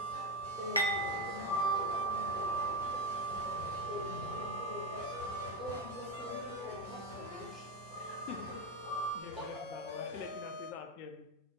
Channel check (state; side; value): normal; both; correlation 0.13